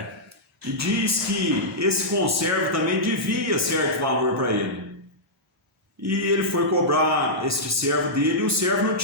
E diz que esse conservo também devia certo valor para ele. E ele foi cobrar este servo dele e o servo não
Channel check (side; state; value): both; normal; correlation -0.11